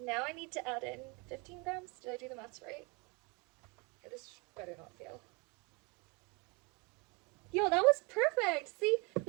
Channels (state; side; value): quieter; left; 29.4 dB